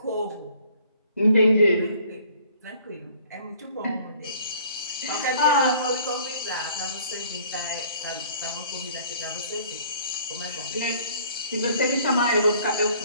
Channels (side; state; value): both; inverted; correlation -0.56